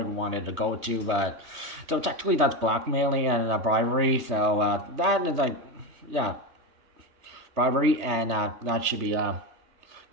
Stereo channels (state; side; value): late; left; 3.2 ms